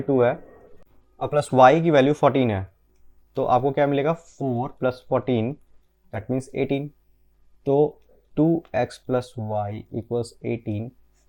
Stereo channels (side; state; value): both; identical; correlation 1.00